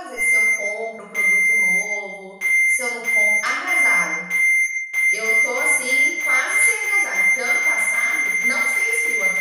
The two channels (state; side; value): identical; both; correlation 1.00